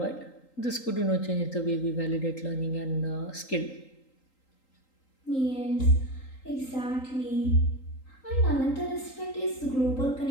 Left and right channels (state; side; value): late; right; 3.8 ms